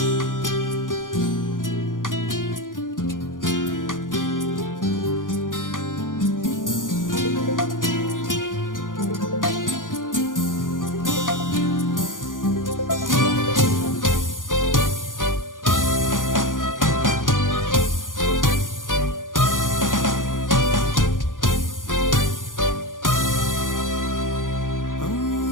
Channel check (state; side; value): late; right; 0.89 ms